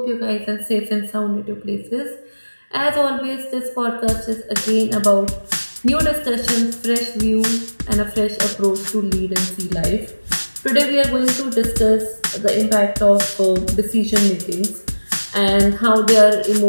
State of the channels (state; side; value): inverted; both; correlation -1.00